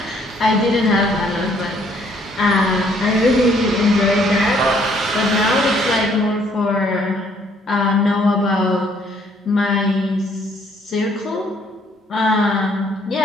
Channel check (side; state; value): both; normal; correlation 0.65